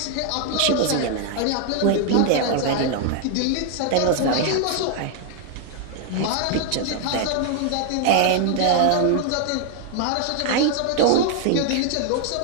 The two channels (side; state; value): both; different; correlation 0.00